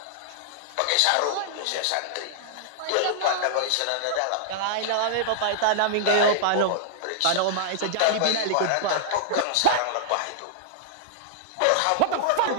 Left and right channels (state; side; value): different; both; correlation -0.01